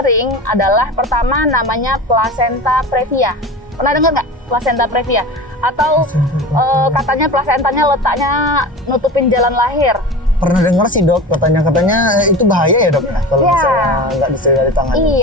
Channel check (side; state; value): both; normal; correlation 0.31